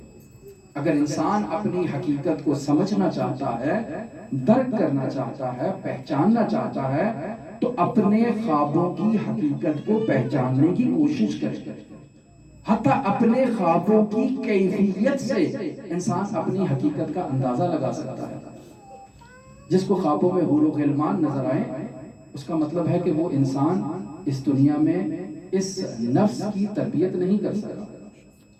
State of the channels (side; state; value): both; identical; correlation 1.00